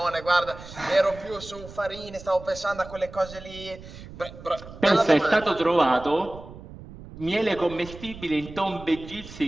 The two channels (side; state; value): right; noise; rumble, 16 dB below the sound